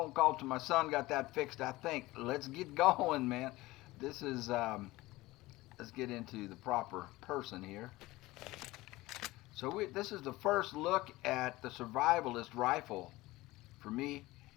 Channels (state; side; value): quieter; right; 19.2 dB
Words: call to my son, got that fixed, I think. Let's get going, man. This is, let's get into the proper person here. So this is the first look at the survivalist rifle for me.